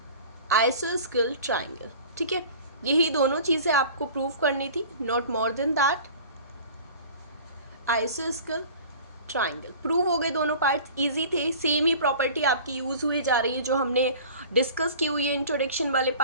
आइसोस्केल ट्राइंगल। ठीक है, यही दोनों चीज़ें आपको प्रूव करनी थी, not more than that. आइसोस्केल triangle prove हो गए, दोनों पार्ट्स इजी थे, सेम ही प्रॉपर्टी आपकी यूज़ हुई जा रही है जो हमने डिस्कस की हुई है इंट्रोडक्शन वाले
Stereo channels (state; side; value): inverted; both; correlation -0.42